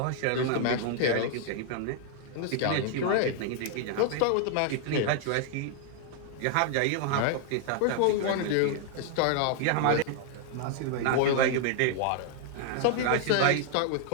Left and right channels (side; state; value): both; different; correlation 0.00